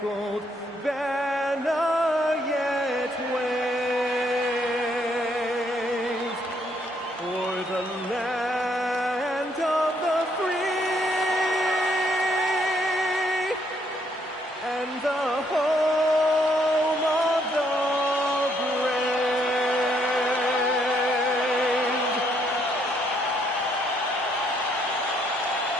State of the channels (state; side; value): normal; both; correlation 0.71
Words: banner yet wave o'er the land of the free and the home of the brave.